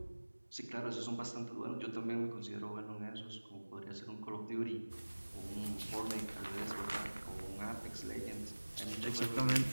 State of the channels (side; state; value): both; inverted; correlation -1.00